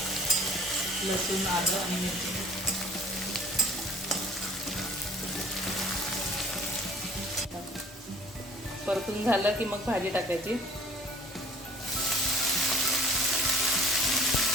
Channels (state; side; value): normal; both; correlation 0.50